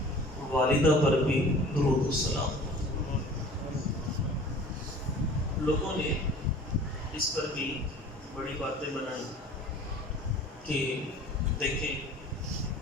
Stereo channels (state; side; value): normal; both; correlation 0.45